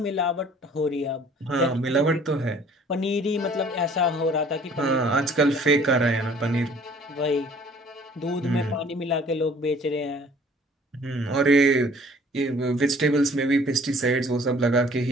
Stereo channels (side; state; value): both; normal; correlation 0.54